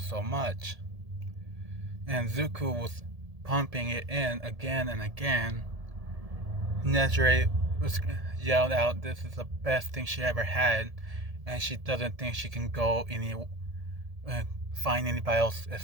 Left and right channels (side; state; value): left; late; 1.7 ms